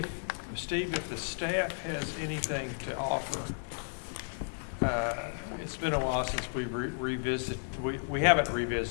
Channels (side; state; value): right; silent; 56 dB below the other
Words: Steve, if the staff has anything to offer, it's been a while since we've revisited, we haven't